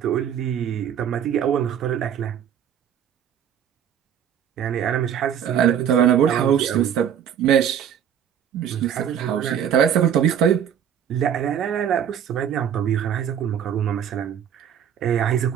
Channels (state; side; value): quieter; left; 9.0 dB